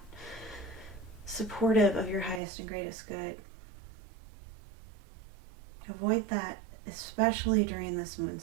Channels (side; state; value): left; drops out; at 2.4 s